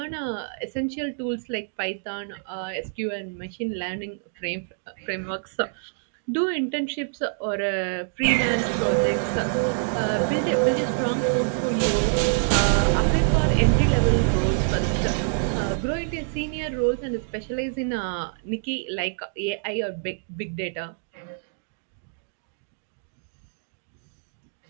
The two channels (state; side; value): silent; left; digital silence